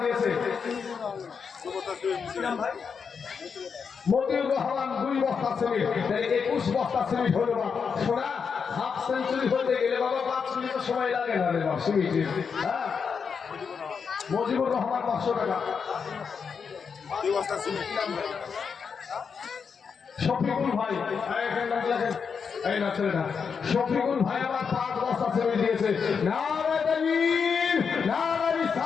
দিয়েছে। ভাই মতিউর রহমান 2 বস্তা সিমেন্ট। 21 বস্তা সিমেন্ট হলো না। শোনা হাফ সেঞ্চুরি হতে গেলে বাবা 5 মিনিট সময় লাগে না রে বাবা সিমেন্টে। হ্যাঁ মজিবুর রহমান 500 টাকা। 2 বস্তা সিমেন্ট। শফিকুল ভাই এই না ছেলেটা শফিকুল ভাই আমার 5 বস্তা সিমেন্ট দিয়েছে। নারে তাকবীর নারে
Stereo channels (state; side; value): quieter; right; 6.1 dB